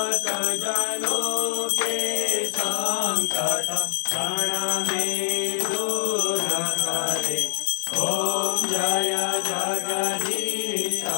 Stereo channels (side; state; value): right; silent; 59 dB below the other